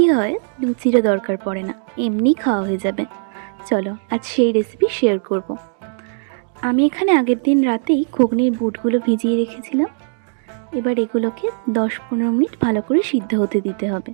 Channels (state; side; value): silent; left; digital silence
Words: হয়, লুচিরও দরকার পড়ে না, এমনি খাওয়া হয়ে যাবে। চলো আজ সেই রেসিপি শেয়ার করব। আমি এখানে আগের দিন রাতেই ঘুগনির বুটগুলো ভিজিয়ে রেখেছিলাম। এবার এগুলোকে 10-15 মিনিট ভালো করে সিদ্ধ হতে দিতে হবে।